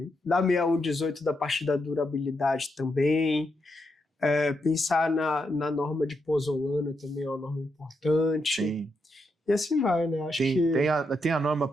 da 6118, da parte da durabilidade também. Pensar na norma de pozolana também é uma norma importante. Sim. E assim vai, né? Acho que... Tem a norma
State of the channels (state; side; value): normal; both; correlation 0.82